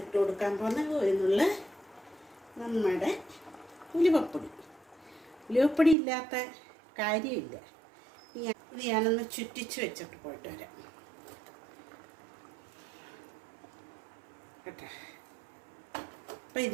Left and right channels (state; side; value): drops out; left; at 6.0 s